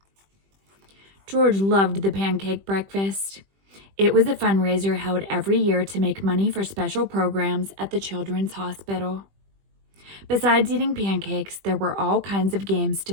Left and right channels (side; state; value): left; late; 20 ms